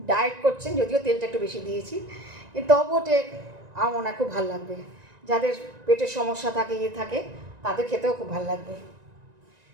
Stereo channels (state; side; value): late; left; 1.9 ms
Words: ডায়েট করছেন, যদিও তেলটা একটু বেশি দিয়েছি, কিন্তু তবুও আমার মনে হয় খুব ভালো লাগবে। যাদের পেটের সমস্যা থাকে, থাকে, তাদের খেতেও খুব ভালো লাগবে।